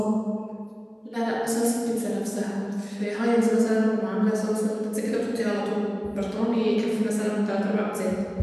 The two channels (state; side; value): identical; both; correlation 1.00